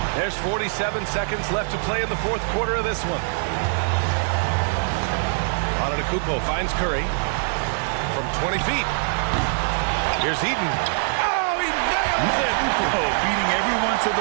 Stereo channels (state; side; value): silent; left; 62 dB below the other